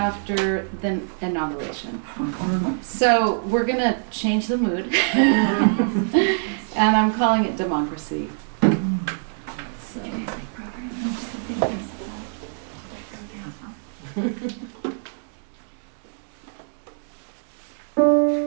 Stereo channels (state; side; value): silent; left; 62 dB below the other